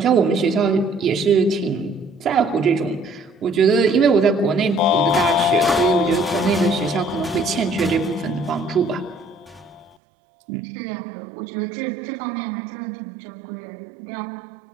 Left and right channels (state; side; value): drops out; left; at 10.0 s